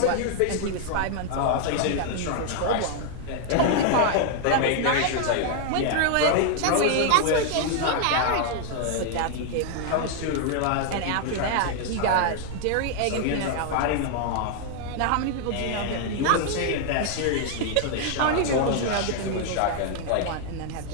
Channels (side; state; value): both; different; correlation 0.00